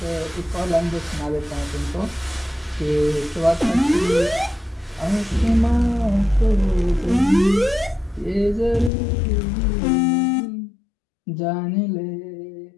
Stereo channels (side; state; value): right; drops out; at 8.9 s